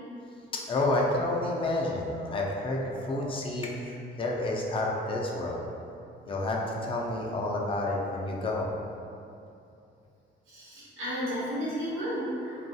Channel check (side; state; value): both; normal; correlation 0.43